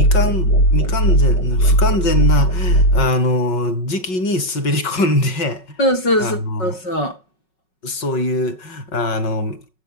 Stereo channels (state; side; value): late; right; 5.4 ms